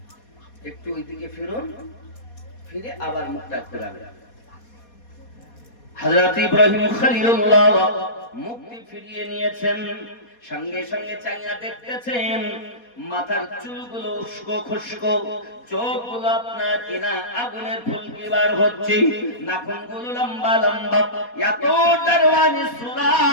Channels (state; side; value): late; right; 4.2 ms